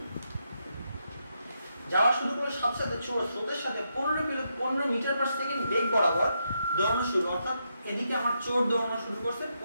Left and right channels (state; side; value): inverted; both; correlation -0.82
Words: সাথে সাথে চোর স্রোতের সাথে 15 মিটার/সেকেন্ড বেগ বরাবর দৌড়ানো শুরু, অর্থাৎ এদিকে আমার চোর দৌড়ানো শুরু করছে